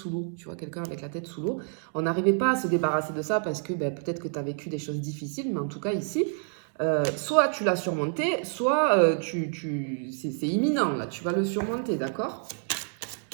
l'eau. Tu vois, quelqu'un avec la tête sous l'eau. On n'arrivait pas à se débarrasser de ça parce que ben, peut-être que tu as vécu des choses difficiles, mais en tout cas, ici, soit tu l'as surmonté, soit c'est imminent, là, tu vas le surmonter, d'accord?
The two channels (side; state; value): left; silent; 55 dB below the other